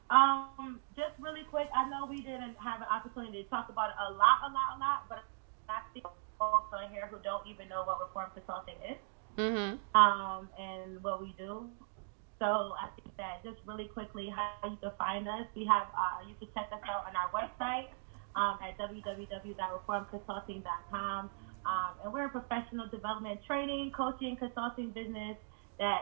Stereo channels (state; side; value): silent; left; digital silence